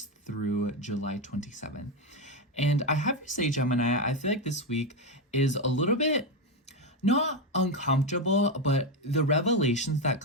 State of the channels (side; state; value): both; normal; correlation 0.10